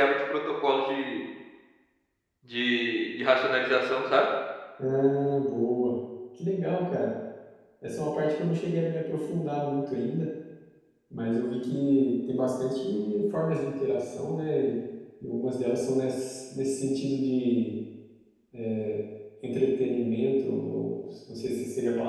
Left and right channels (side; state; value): both; identical; correlation 1.00